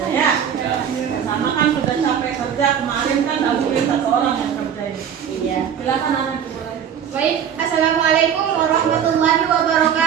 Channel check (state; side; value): quieter; left; 8.4 dB